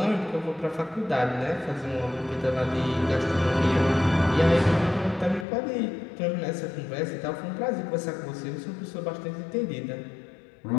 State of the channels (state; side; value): drops out; right; at 5.5 s